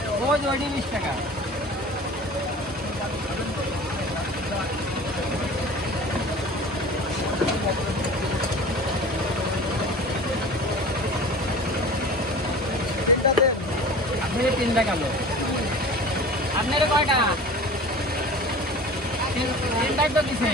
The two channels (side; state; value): both; normal; correlation 0.39